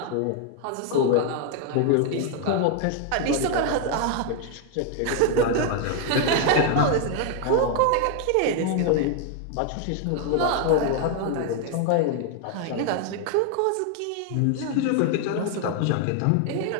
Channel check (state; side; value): different; both; correlation 0.00